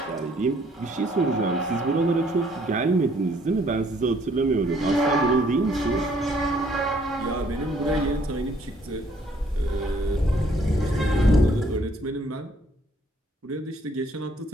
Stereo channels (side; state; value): both; normal; correlation 0.64